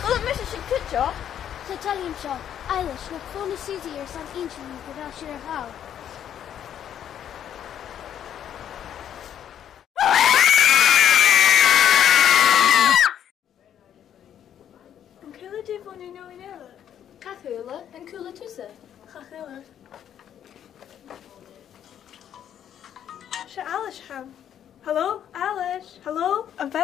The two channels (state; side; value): quieter; right; 9.8 dB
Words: kom met een kutje. Sa talim seo, Eilish, na fóna Susie ar san inch ní go bhfuil siar a há. An cúla dí bhna nó in eile. Cathula and cooler tusa. Chachúla. Se Alice ham. Hello, Alice. Hello, an